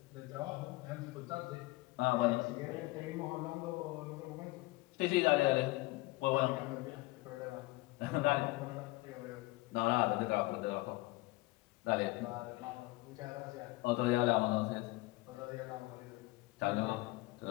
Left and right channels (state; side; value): quieter; right; 21.6 dB